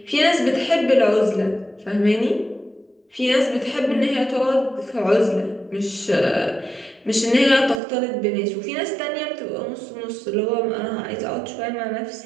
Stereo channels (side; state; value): left; drops out; at 7.8 s